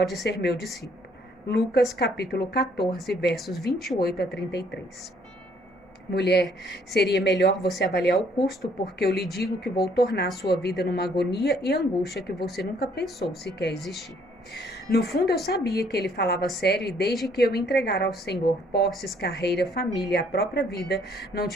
ser meu discípulo. Lucas capítulo 14, versos 28 a 33. Mulher, seria melhor você avaliar o custo, porque eu lhe digo que vou tornar a sua vida numa agonia e angústia que você nunca pensou sequer existir. No fundo, eu sabia que ele falava sério e desde que eu me entregara ao Senhor posses, carreira, família e a própria vida, não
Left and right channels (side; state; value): both; normal; correlation 0.64